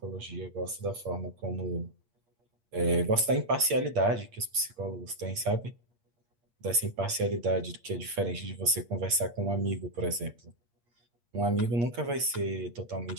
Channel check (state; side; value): late; left; 8.5 ms